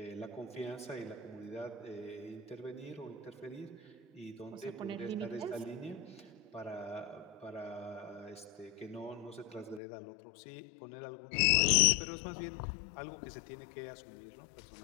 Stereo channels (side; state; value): right; drops out; at 9.8 s